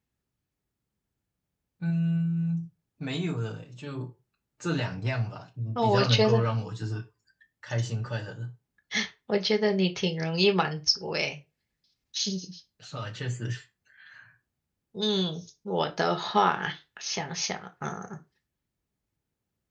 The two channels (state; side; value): identical; both; correlation 1.00